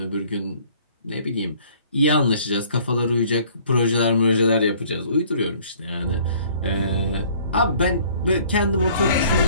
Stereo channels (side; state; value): both; inverted; correlation -0.56